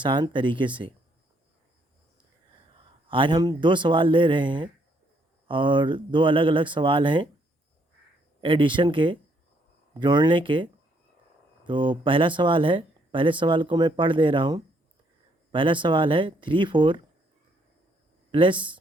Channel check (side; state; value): both; normal; correlation 0.70